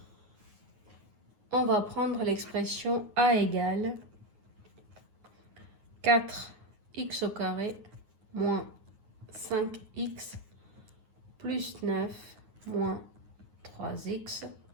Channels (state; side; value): late; left; 9.5 ms